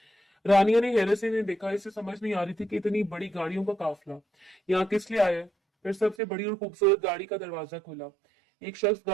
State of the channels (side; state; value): left; drops out; at 6.2 s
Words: रानिया ने हैरत से देखा। इसे समझ नहीं आ रही थी कि इतनी बड़ी गाड़ियों का काफिला यहाँ किस लिए आया है। फिर सबसे बड़ी और खूबसूरत गाड़ी का दरवाजा खुला। एक शख्स